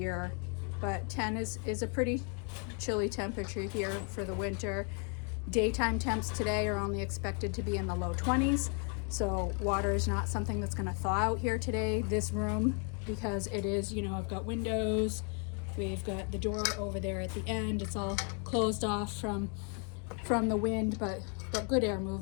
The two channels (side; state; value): right; quieter; 39.7 dB